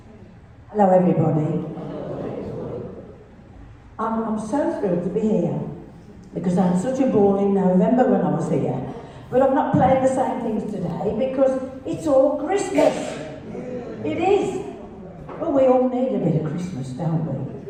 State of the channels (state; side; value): identical; both; correlation 1.00